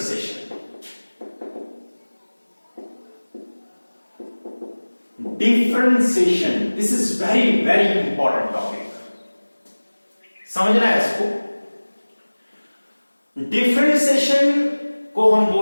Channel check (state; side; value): inverted; both; correlation -1.00